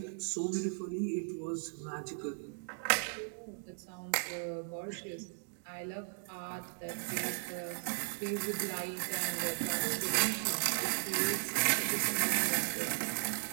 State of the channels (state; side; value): silent; left; digital silence